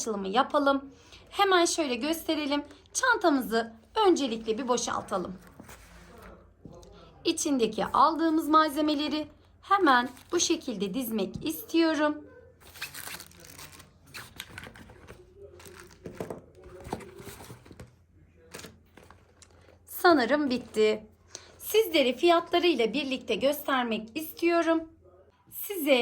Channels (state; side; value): identical; both; correlation 1.00